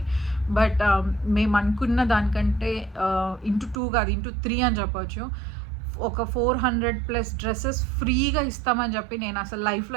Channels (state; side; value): drops out; left; at 3.8 s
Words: బట్ మేము అనుకున్న దానికంటే ఇంటూ 2 కాదు, ఇంటూ 3 అని చెప్పొచ్చు. ఒక 400+ డ్రెస్సెస్ ఫ్రీగా ఇస్తామని చెప్పి నేను అసలు